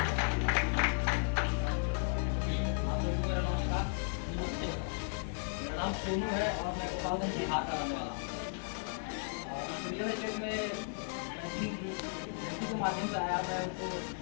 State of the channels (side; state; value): right; silent; digital silence